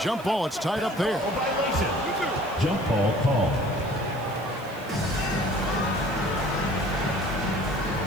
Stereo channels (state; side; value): noise; right; hiss, 22 dB below the sound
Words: ball. It's tied up there. Violation. Jump ball call.